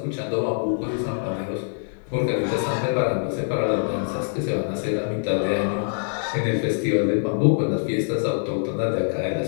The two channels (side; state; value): right; silent; digital silence